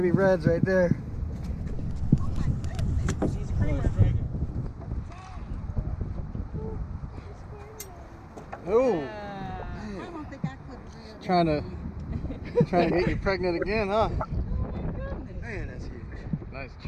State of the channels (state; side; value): identical; both; correlation 1.00